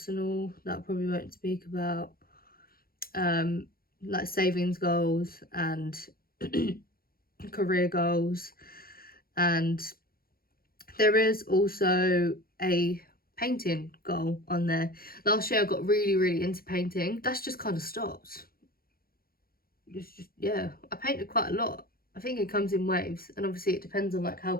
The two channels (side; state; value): right; late; 0.43 ms